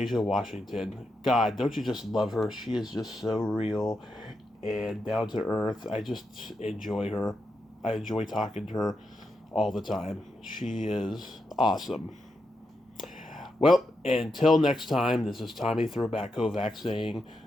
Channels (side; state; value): both; normal; correlation 0.85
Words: Washington. God, don't you just love her? She is just so real and down to earth. I just enjoy her. I enjoy talking to her all the time. She is awesome. Well, until next time, this is Tommy Throwback Kovac saying